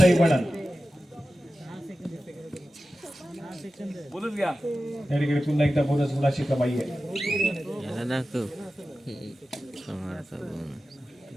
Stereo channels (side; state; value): both; normal; correlation 0.94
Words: वणन. या ठिकाणी पुन्हा एकदा बोनस गुणाची कमाई आहे.